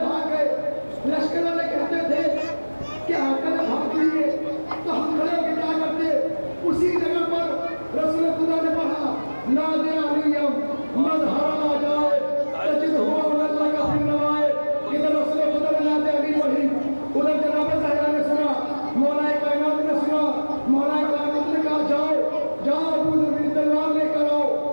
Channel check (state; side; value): inverted; both; correlation -1.00